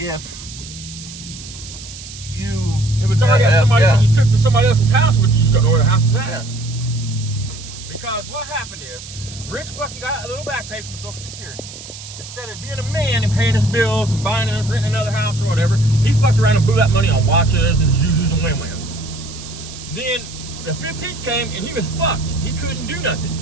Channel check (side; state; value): right; noise; hiss, 14 dB below the sound